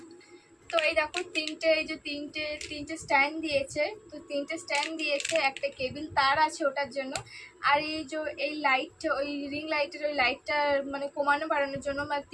তো এই দেখো তিনটে স্ট্যান্ড দিয়েছে। তো তিনটে স্ট্যান্ড দিয়েছে, একটা কেবিল তার আছে ওটার জন্য। আর এই লাইট, ওই রিং লাইটের ওই লাইটটা মানে কমানো বাড়ানোর জন্য, মানে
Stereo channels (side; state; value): both; identical; correlation 1.00